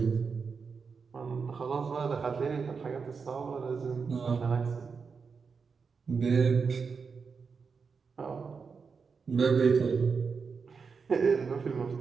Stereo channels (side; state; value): left; quieter; 5.4 dB